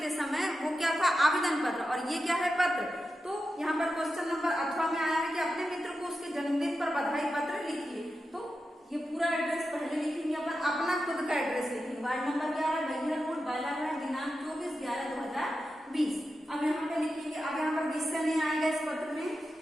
समय वो क्या था, आवेदन पत्र, और ये क्या है पत्र। तो यहाँ पर क्वेश्चन नंबर अथवा में आया है कि अपने मित्र को उसके जन्मदिन पर बधाई पत्र लिखिए। तो ये पूरा एड्रेस पहले लिखेंगे अपन, अपना खुद का एड्रेस लिखेंगे, ward number 11 Baihar road Balaghat, दिनांक 24/11/2020। अब यहाँ पे लिखेंगे, अब यहाँ पर विषय नहीं आएगा इस पत्र में,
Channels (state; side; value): normal; both; correlation 0.90